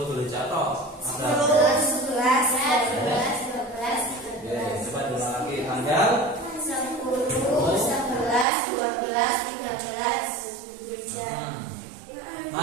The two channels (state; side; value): drops out; left; at 8.5 s